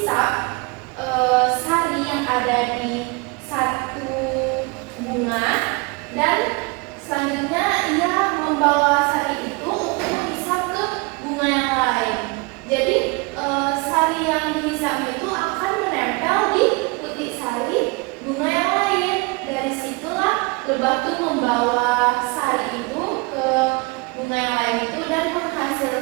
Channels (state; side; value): quieter; left; 27.8 dB